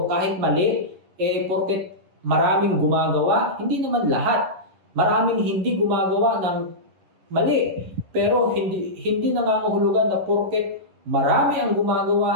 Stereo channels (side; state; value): left; late; 11 ms